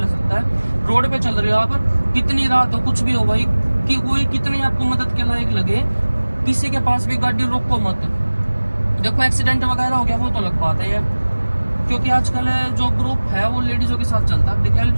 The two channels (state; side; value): inverted; both; correlation -1.00